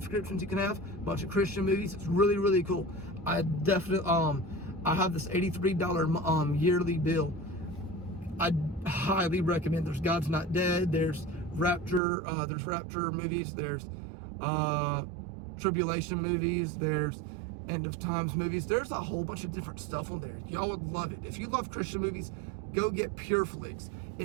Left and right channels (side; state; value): left; drops out; at 12.0 s